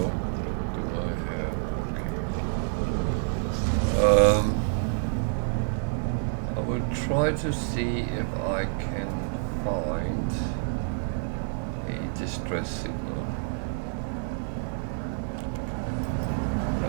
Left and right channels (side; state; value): left; silent; digital silence